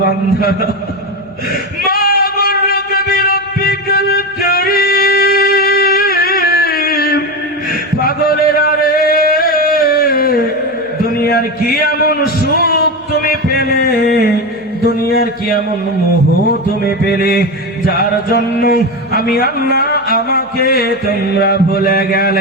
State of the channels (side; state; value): left; noise; hum, 30 dB below the sound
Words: বান্দা, মা গুররুকা বিরাব্বিকাল কারীম। পাগলেরা রে, দুনিয়ার কি এমন সুখ তুমি পেলে, দুনিয়ার কি এমন মোহ তুমি পেলে, যার জন্য আমি আল্লাহ আমাকে তোমরা ভুলে